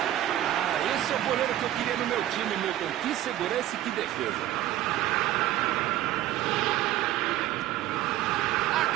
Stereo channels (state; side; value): quieter; left; 13.6 dB